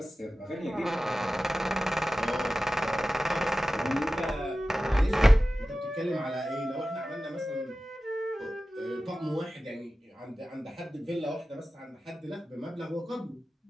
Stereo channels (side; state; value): both; normal; correlation 0.95